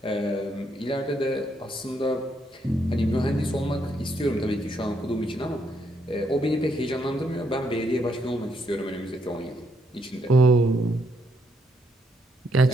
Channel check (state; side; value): normal; both; correlation 0.75